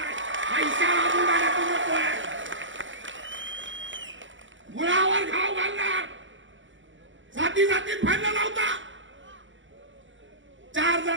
पैशाला बुडाला तू नकोय, मुळावर घाव घालणार. जाती जातीत भांडण लावता. 4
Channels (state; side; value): late; left; 0.56 ms